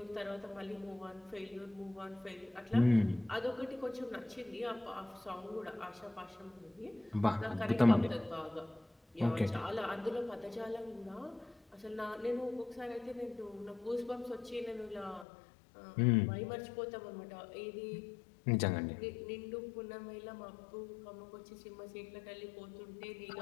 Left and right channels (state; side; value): drops out; right; at 15.2 s